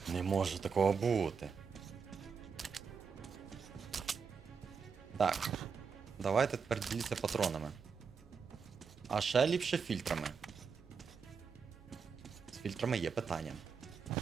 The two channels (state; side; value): quieter; left; 5.8 dB